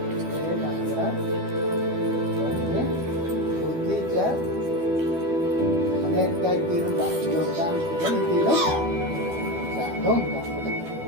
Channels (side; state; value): left; late; 12 ms